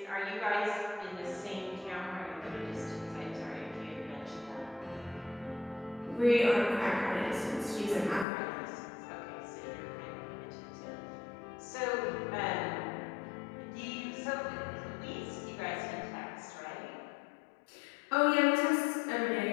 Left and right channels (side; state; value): right; drops out; at 8.2 s